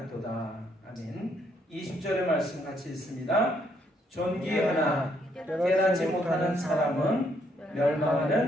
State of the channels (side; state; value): both; normal; correlation 0.72